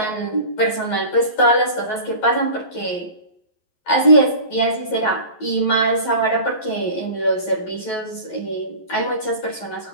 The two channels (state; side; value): late; right; 11 ms